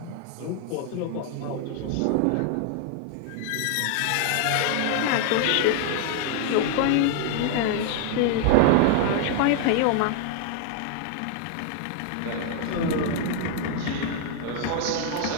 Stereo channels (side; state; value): both; different; correlation 0.00